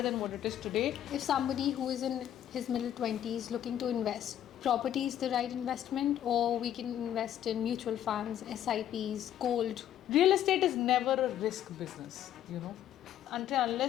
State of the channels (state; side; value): quieter; right; 11.1 dB